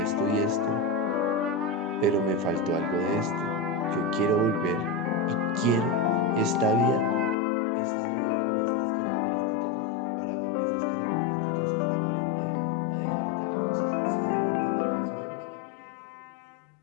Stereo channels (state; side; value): drops out; right; at 7.4 s